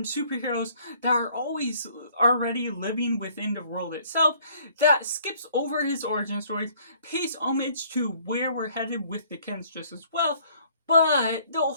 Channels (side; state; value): both; inverted; correlation -0.60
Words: superheroes that are always already living within the world itself, that skips over his origin stories, pays homage to where we're headed with the Kents just as well. But the